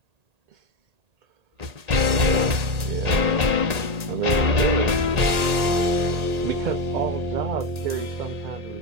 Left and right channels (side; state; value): left; late; 1.8 ms